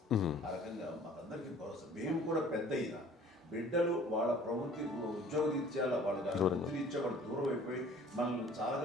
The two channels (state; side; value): normal; both; correlation 0.51